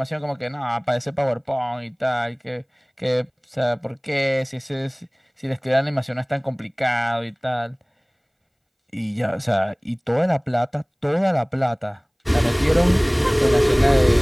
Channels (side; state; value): both; identical; correlation 1.00